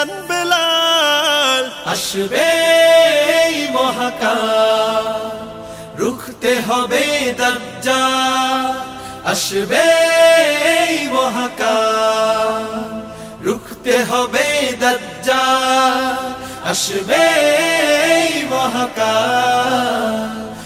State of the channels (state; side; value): identical; both; correlation 1.00